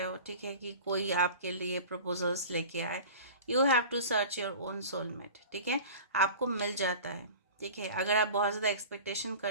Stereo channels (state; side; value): inverted; both; correlation -0.38